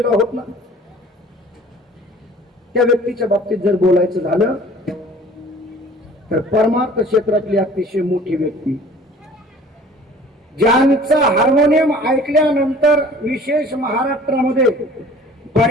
आहोत ना त्या व्यक्तीच्या बाबतीत जर बोलायचं झालं तर परमार्थ क्षेत्रातली अतिशय मोठी व्यक्ती ज्यांचा हार्मोनियम ऐकल्यानंतर विशेष महाराष्ट्रामध्ये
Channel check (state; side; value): normal; both; correlation 0.48